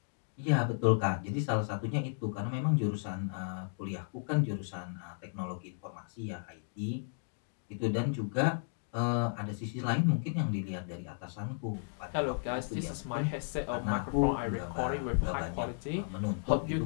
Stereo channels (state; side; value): silent; right; digital silence